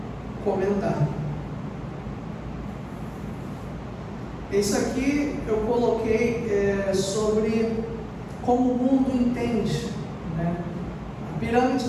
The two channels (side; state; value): both; identical; correlation 1.00